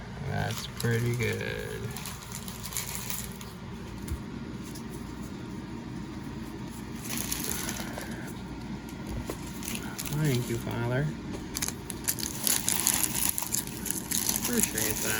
That's pretty good. Thank you, Father. Appreciate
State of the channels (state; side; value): identical; both; correlation 1.00